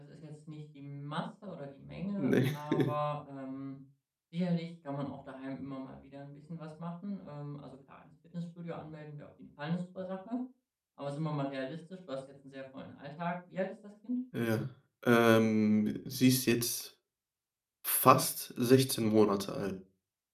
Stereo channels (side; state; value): both; identical; correlation 1.00